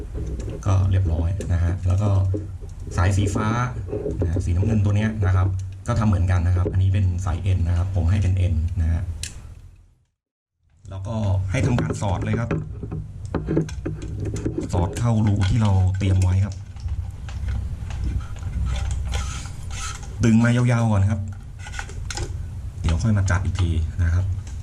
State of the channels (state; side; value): identical; both; correlation 1.00